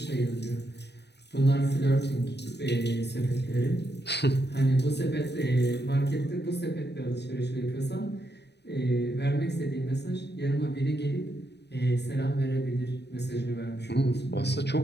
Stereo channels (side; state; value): right; late; 0.49 ms